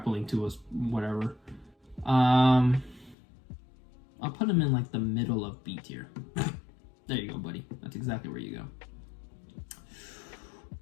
to us, whatever. I'll put him in like the middle of B tier. There you go, buddy. That's exactly where you go.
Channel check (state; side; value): drops out; right; at 3.2 s